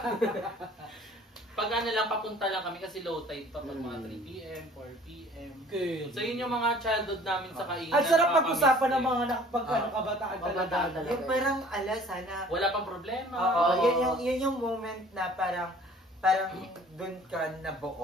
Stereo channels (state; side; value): normal; both; correlation 0.51